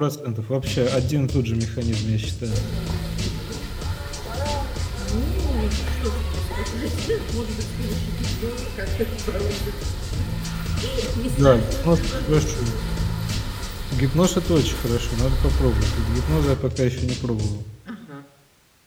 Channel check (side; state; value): both; identical; correlation 1.00